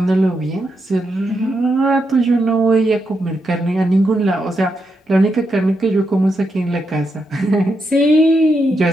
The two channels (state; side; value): normal; both; correlation 0.83